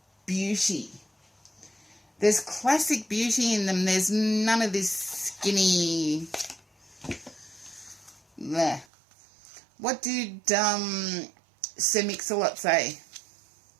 beauty. There's classic beauty in them. There's none of this skinny... Bleh. What did Sir Mix-a-Lot say?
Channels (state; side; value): drops out; left; at 8.8 s